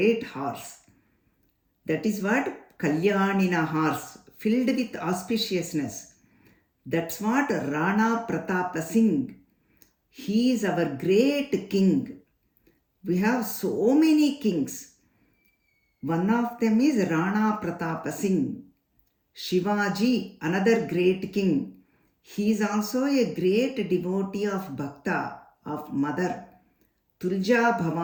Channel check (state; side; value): identical; both; correlation 1.00